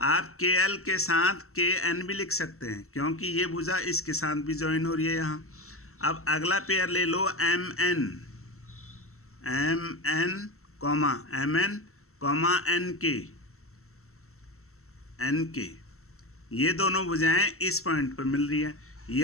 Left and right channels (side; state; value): right; late; 0.63 ms